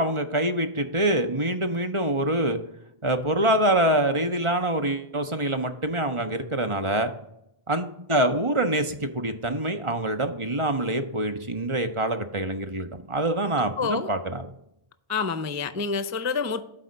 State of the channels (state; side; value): late; left; 1.4 ms